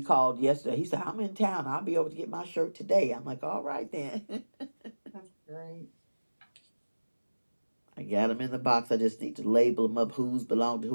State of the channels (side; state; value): both; inverted; correlation -1.00